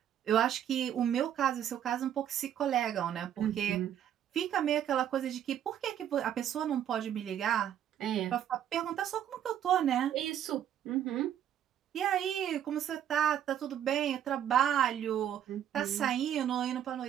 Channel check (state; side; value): quieter; left; 10.1 dB